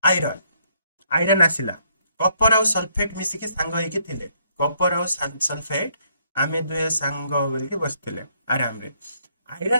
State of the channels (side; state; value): both; inverted; correlation -0.69